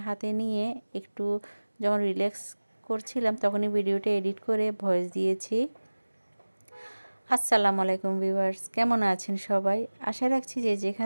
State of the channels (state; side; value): inverted; both; correlation -1.00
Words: হাতে নিয়ে একটু যখন রিল্যাক্স করছিলাম তখনই ভিডিওটা এডিট করে ভয়েস দিয়েছি। আসসালামু আলাইকুম ভিউয়ার্স, কেমন আছেন সবাই? আশা রাখছি যে